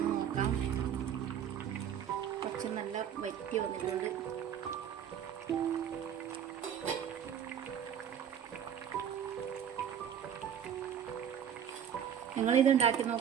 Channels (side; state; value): left; quieter; 9.0 dB